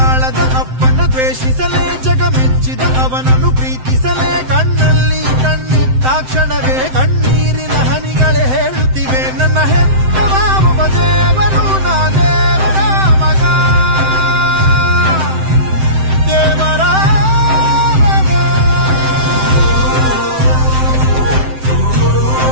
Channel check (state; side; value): late; left; 7.8 ms